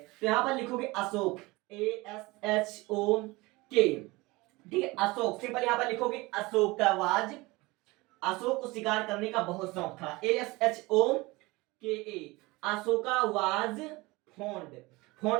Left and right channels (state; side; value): quieter; left; 22.4 dB